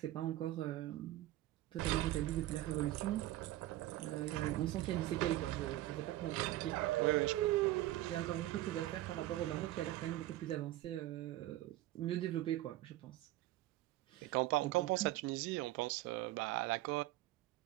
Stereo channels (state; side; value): quieter; left; 15.7 dB